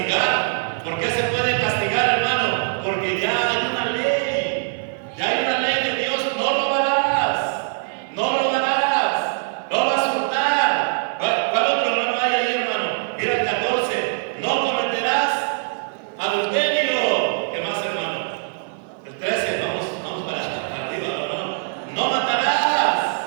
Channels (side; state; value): left; silent; 56 dB below the other